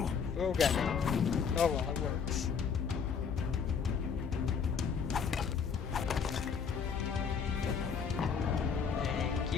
Oh god. Oh well, it works. Thank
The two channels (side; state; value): right; quieter; 6.4 dB